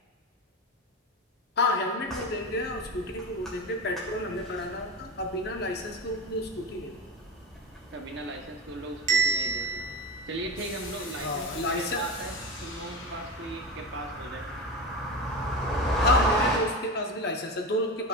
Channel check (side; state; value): both; normal; correlation 0.22